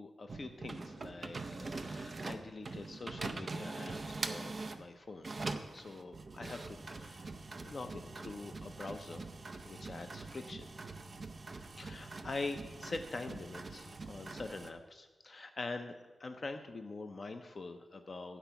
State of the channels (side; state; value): both; normal; correlation 0.91